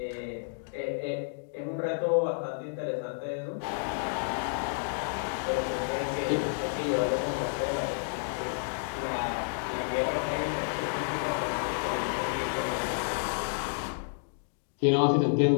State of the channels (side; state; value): right; silent; digital silence